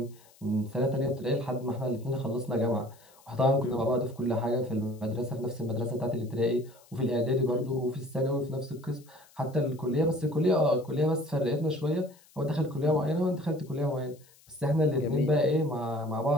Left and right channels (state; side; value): noise; left; hiss, 28 dB below the sound